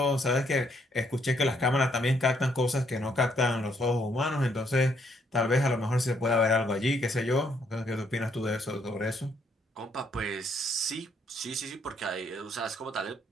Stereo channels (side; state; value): both; normal; correlation 0.71